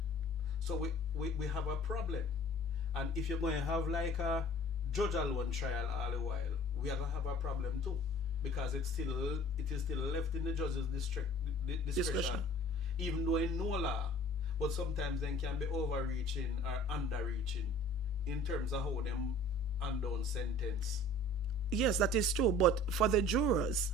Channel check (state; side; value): normal; both; correlation 0.48